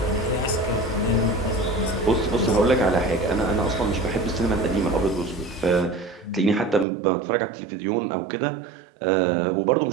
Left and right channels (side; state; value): left; drops out; at 6.9 s